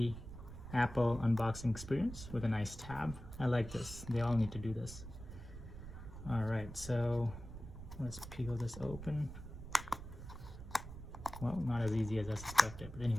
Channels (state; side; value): noise; right; rumble, 12 dB below the sound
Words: Apple unboxing experience with a nice tab. I like this. They all need to do this. All right, so let's peel this open. Well, not as easy as I suspected, but